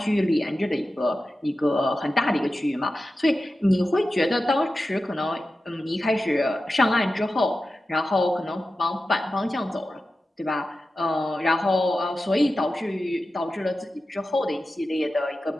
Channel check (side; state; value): both; normal; correlation 0.93